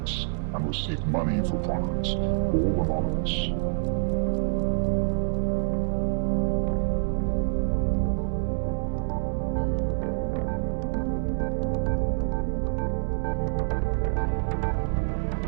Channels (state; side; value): silent; left; 60 dB below the other